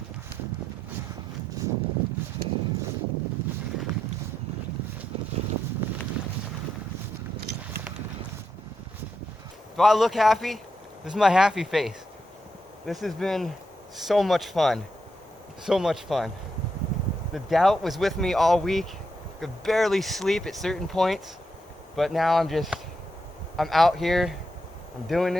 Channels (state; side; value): normal; both; correlation 0.82